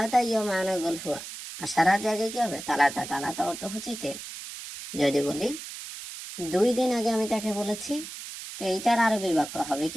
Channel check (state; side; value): noise; right; hiss, 10 dB below the sound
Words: ইয়ম আনা গুল হুয়া। আশারা জায়গায় কি হবে তালাতা। তালাতা অর্থ হচ্ছে 3। যদি বলি 2 দিন আগে আমি তাকে বলেছি, তো এইটার আরবি বাক্য হবে